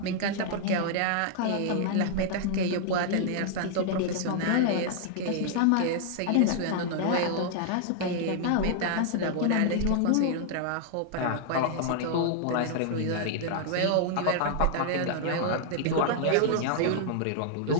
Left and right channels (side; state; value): both; different; correlation -0.01